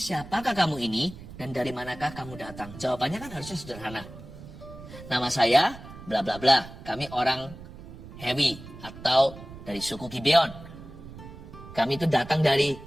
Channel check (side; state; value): right; noise; rumble, 15 dB below the sound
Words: kamu ini dan dari manakah kamu datang? Jawabannya kan harusnya sederhana. Nama saya, bla bla bla. Kami orang Hewi atau dari suku Gibeon. Kami itu datang dari